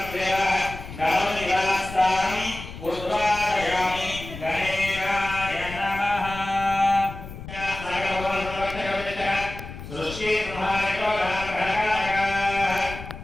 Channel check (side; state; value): left; noise; rumble, 12 dB below the sound